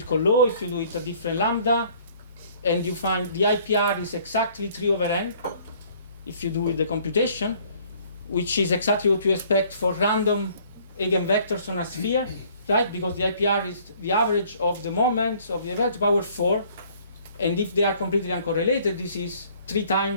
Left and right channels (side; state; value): both; inverted; correlation -0.58